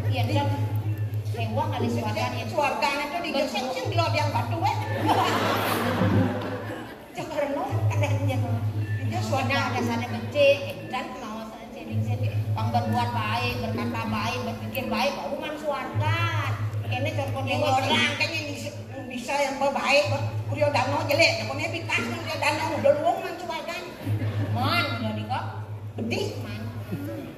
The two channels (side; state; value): both; identical; correlation 1.00